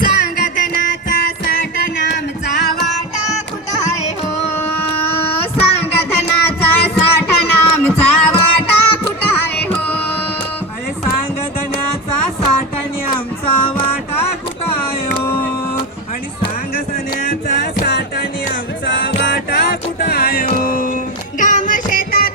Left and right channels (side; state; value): both; normal; correlation 0.20